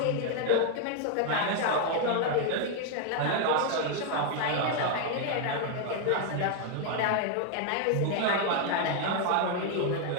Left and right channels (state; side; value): different; both; correlation 0.00